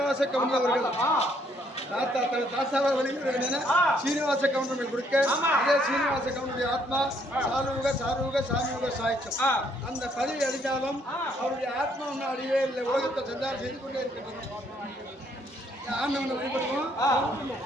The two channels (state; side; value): normal; both; correlation 0.68